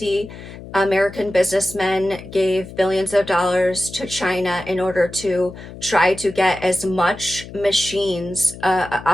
American businessmen gave billions of dollars to China in order to try to get as much machines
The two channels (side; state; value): left; noise; hum, 14 dB below the sound